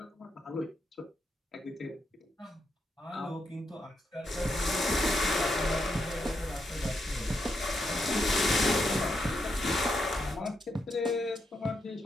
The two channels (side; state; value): both; normal; correlation 0.81